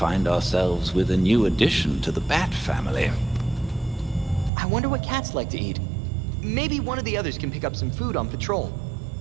ourselves with a new addition to the Bat family. I wonder what cats like to eat. Maybe one of the others can pick up some food on patrol.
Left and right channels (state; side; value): drops out; left; at 4.5 s